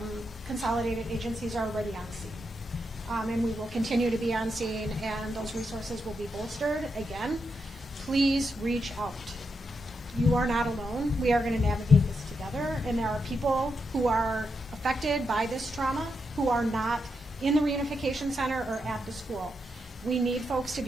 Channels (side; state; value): both; normal; correlation 0.84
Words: consolidated agencies, are already on scene. And we will continue to be on scene, and those resources will be bolstered. Again, please reach out. You are not alone. We are going to navigate this together, and there are people who are affected by this trauma who are not in the reunification center or at the school. We need folks to